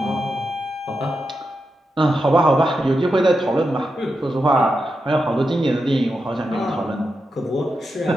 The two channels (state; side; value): normal; both; correlation 0.87